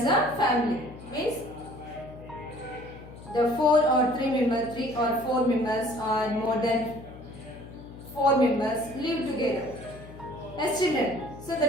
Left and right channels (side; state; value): left; noise; hum, 16 dB below the sound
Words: a family, means the four or four members or more than four members live together as children. So